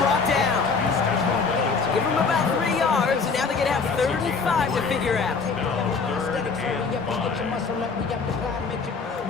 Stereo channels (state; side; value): quieter; right; 4.9 dB